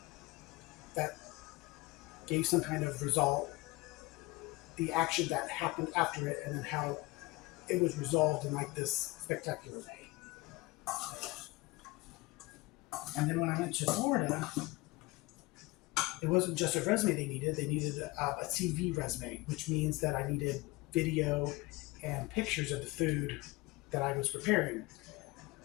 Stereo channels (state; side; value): quieter; right; 22.6 dB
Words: that gave some kind of result, the action that happened after it, and then how it was resolved in like this spectacular way. And then when I went to Florida, it wasn't just a resume they needed a CV resume, which means that I needed video and pictures of the food that I was preparing.